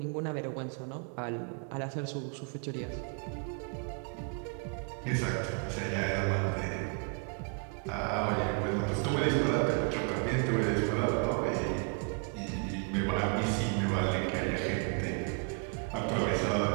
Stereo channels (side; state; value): left; quieter; 39.1 dB